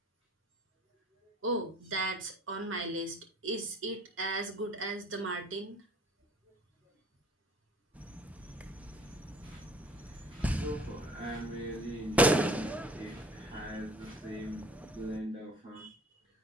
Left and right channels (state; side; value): normal; both; correlation 0.50